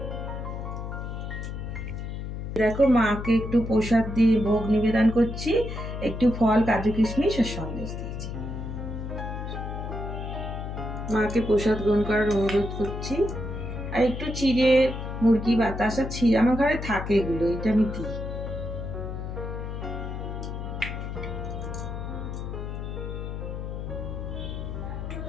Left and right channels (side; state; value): left; noise; hum, 6 dB below the sound